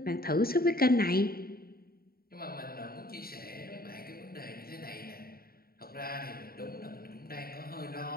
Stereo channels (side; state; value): right; late; 0.44 ms